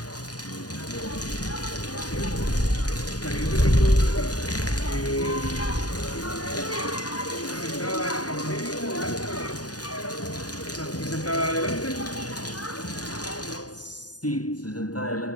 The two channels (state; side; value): late; right; 0.68 ms